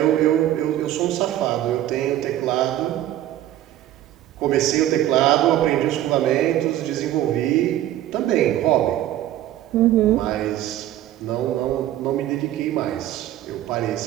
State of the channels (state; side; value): quieter; left; 13.2 dB